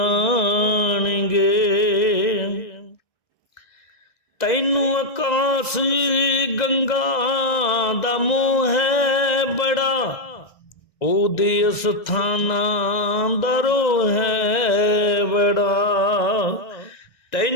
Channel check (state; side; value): late; right; 2.0 ms